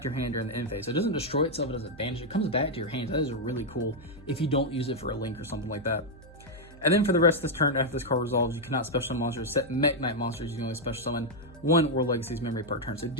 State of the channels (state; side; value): noise; right; hum, 20 dB below the sound